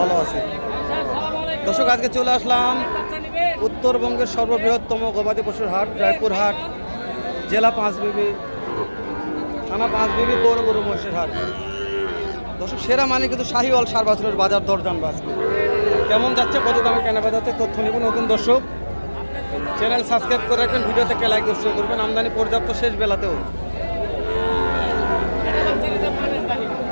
ভালো আছি। দর্শক, আজকে চলে আসলাম উত্তরবঙ্গের সর্ববৃহত্তম গবাদি পশুর হাট রায়পুর হাট, জেলা পাঁচবিবি, থানা পাঁচবিবি, পৌর গরু মহিষের হাট। দর্শক, সেরা মানে কিন্তু শাহিওয়াল সার বাছুরের বাজার দর জানবো আজকে কেমন যাচ্ছে, কত দামে কেনা বেচা হচ্ছে তথ্য নিব। নতুন দর্শক, চ্যানেল সাবস্ক্রাইব করে রাখবেন, ভিডিও থেকে লাইক দর্শক করবেন। আমদানি পর্যাপ্ত শেষ বেলাতেও।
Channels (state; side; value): inverted; both; correlation -1.00